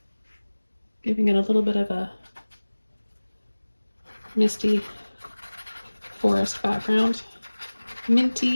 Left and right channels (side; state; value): both; inverted; correlation -1.00